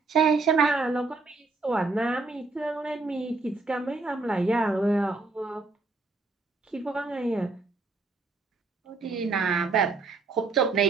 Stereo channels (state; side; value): quieter; left; 3.7 dB